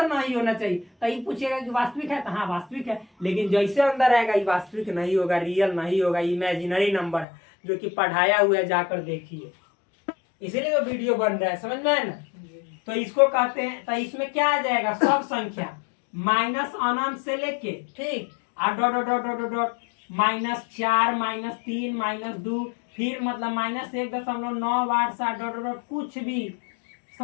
नहीं होना चाहिए तो ये पूछेगा कि वास्तविक है तो हाँ वास्तविक है, लेकिन जैसे अंदर रहेगा ये वास्तविक नहीं होगा, रियल नहीं होगा, इमेजिनरी नंबर है जो कि पढ़ाया हुआ है, जाकर देखिए, इसीलिए तो वीडियो बन रहा है। समझ में है ना? तो इसको कहते हैं, तो इसमें क्या आ जाएगा? सब संख्या माइनस अनंत से लेके, ठीक, और dot dot dot dot dot -4 -3 -2, फिर मतलब -1.987 डॉट डॉट कुछ भी।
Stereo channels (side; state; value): right; drops out; at 7.2 s